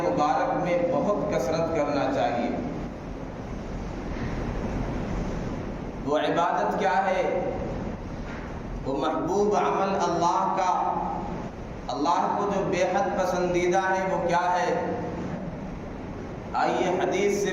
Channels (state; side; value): identical; both; correlation 1.00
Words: میں بہت کثرت کرنا چاہیے۔ وہ عبادت کیا ہے؟ وہ محبوب عمل اللہ کا، اللہ کو جو بے حد پسندیدہ ہے وہ کیا ہے؟ آئیے حدیث